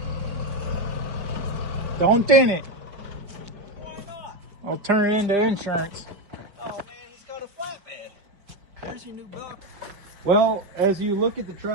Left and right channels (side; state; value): left; late; 5.0 ms